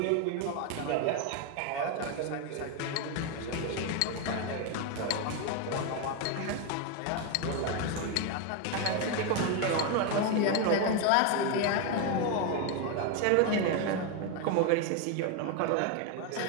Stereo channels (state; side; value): different; both; correlation 0.02